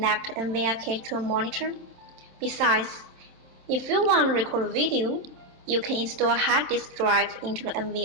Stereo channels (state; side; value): late; left; 27 ms